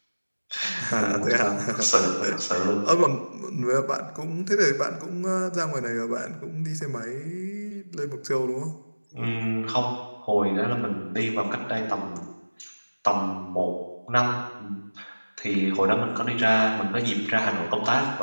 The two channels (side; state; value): both; inverted; correlation -1.00